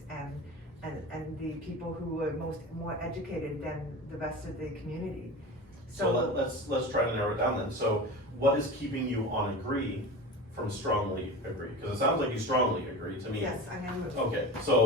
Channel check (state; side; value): normal; both; correlation 0.31